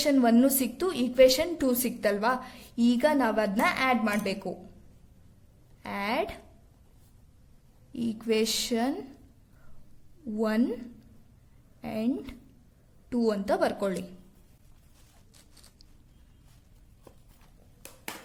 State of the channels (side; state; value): both; identical; correlation 1.00